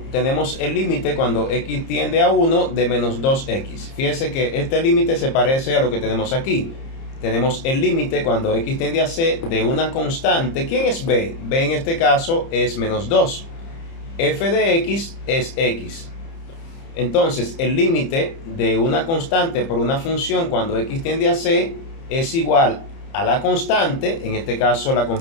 tenemos el límite cuando x tiende a 1 de menos 2x. Fíjese que este límite se parece a lo que tenemos aquí. Tenemos el límite cuando x tiende a c de una constante. ¿Quién es b? b en este caso es menos 2. F de x es x. Entonces el límite de una constante por una función cuando x tiende a c es igual a la constante, en este caso la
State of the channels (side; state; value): right; late; 30 ms